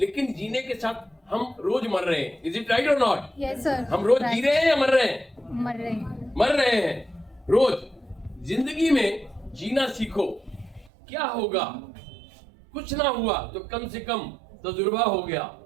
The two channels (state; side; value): drops out; left; at 10.9 s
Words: जीने के साथ हम रोज मर रहे हैं। इज इट राइट और नॉट? Yes sir. हम रोज जी रहे हैं या मर रहे हैं? मर रहे हैं। मर रहे हैं रोज। जिंदगी में जीना सीखो। क्या होगा? कुछ ना हुआ तो कम से कम तजुर्बा हो गया।